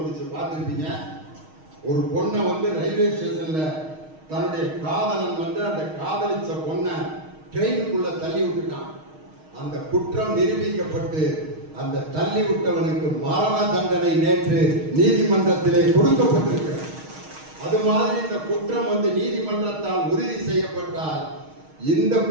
பார்த்துருப்பீங்க. ஒரு பொண்ணை ரயில்வே ஸ்டேஷன்ல தன்னுடைய காதலன் அந்த காதலிச்ச பொண்ணை ட்ரெயினுக்குள்ள தள்ளி விட்டுட்டான். அந்த குற்றம் நிரூபிக்கப்பட்டு அந்த தள்ளி விட்டவனுக்கு மரண தண்டனை நேற்று நீதிமன்றத்திலே கொடுக்கப்பட்டிருக்கிறது. அது மாதிரி இந்த குற்றம் நீதிமன்றத்தால் உறுதி செய்யப்பட்டால் இந்த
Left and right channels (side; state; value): left; late; 6.4 ms